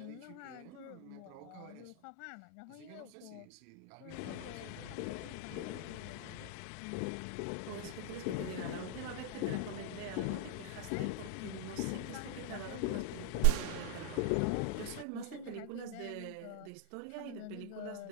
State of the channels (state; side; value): different; both; correlation -0.01